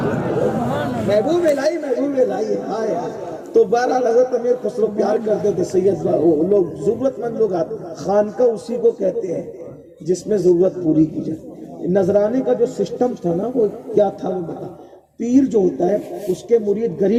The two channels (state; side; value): identical; both; correlation 1.00